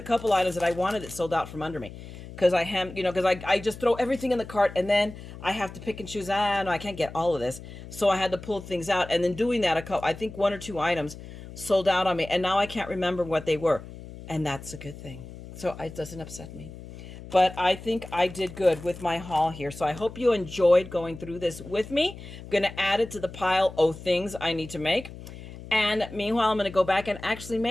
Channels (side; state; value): left; noise; hum, 14 dB below the sound